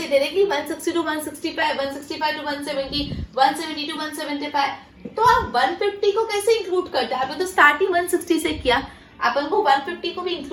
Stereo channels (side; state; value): both; identical; correlation 1.00